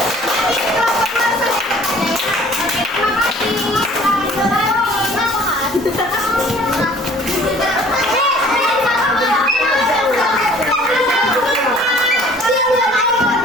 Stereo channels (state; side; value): normal; both; correlation 0.52